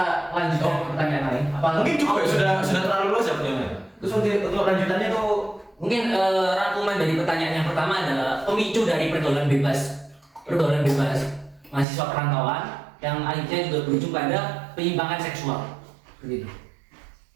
lanjut ke pertanyaan lain. Mungkin cukup ya, sudah terlalu luas ya pertanyaannya. Terus untuk lanjutannya tuh Mungkin rangkuman dari pertanyaan yang pertama adalah pemicu dari pergaulan bebas mahasiswa perantauan yang akhirnya juga berujung pada penyimpangan seksual. Begitu.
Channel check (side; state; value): left; drops out; at 11.9 s